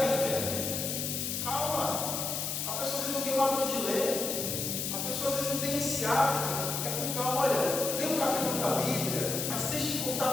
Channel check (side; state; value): left; noise; hiss, 2 dB below the sound